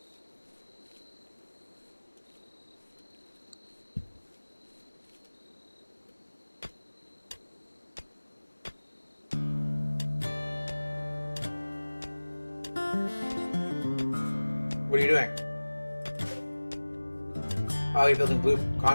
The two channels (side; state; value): both; inverted; correlation -1.00